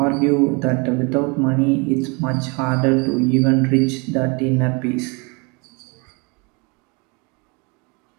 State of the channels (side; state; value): left; quieter; 30.1 dB